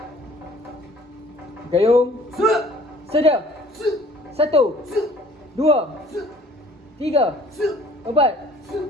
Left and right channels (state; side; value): normal; both; correlation 0.53